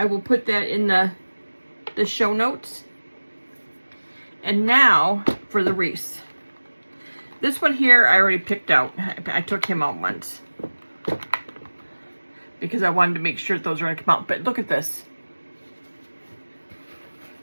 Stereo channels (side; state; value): both; inverted; correlation -1.00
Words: will put that in the show notes. And now for the wreath. This one here I already picked out. I took him out once because I wanted to make sure those are going to come out. But look at this.